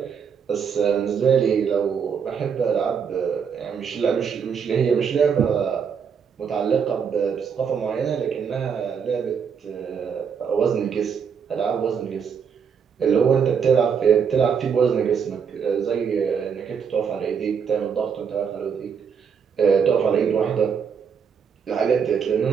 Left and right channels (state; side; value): quieter; left; 6.9 dB